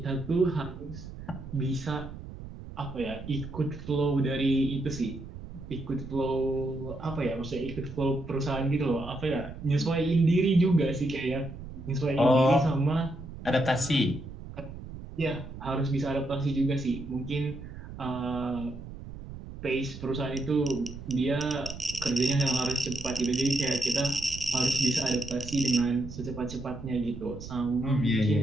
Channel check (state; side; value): noise; right; rumble, 12 dB below the sound